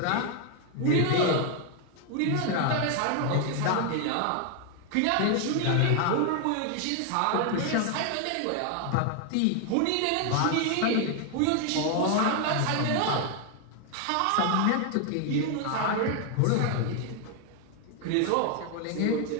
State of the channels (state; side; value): different; both; correlation 0.01